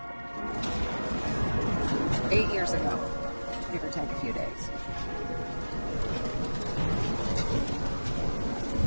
8 years ago, give or take a few days.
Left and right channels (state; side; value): inverted; both; correlation -1.00